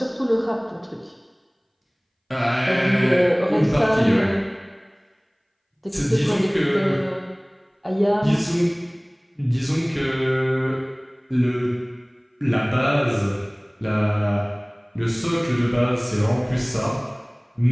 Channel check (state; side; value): identical; both; correlation 1.00